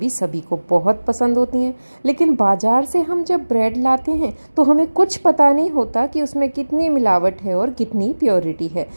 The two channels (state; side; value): inverted; both; correlation -1.00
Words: सभी को बहुत पसंद होती हैं। लेकिन बाज़ार से हम जब ब्रेड लाते हैं तो हमें कुछ पता नहीं होता कि उसमें कितनी मिलावट है और कितनी प्योरिटी है।